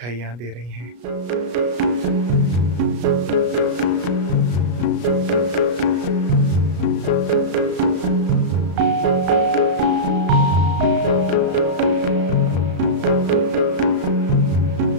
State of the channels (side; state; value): left; late; 33 ms